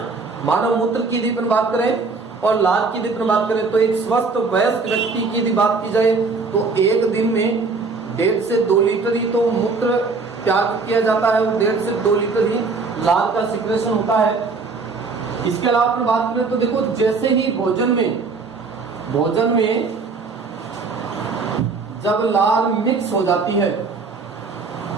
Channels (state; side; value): quieter; left; 4.3 dB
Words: मानव मूत्र की यदि अपन बात करें और लाल की यदि अपन बात करें तो एक स्वस्थ वयस्क व्यक्ति की यदि बात की जाए तो एक दिन में 1.5 से 2 लीटर ही तो मूत्र त्याग किया जाता है, 1.5 से 2 लीटर ही लाल का सिक्रेशन होता है। इसके अलावा अपन बात करें तो देखो, जैसे ही भोजन में जब लाल मिक्स हो जाती है,